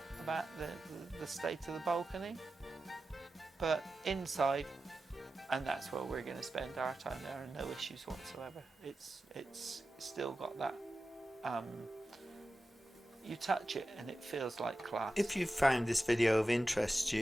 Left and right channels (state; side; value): normal; both; correlation 0.93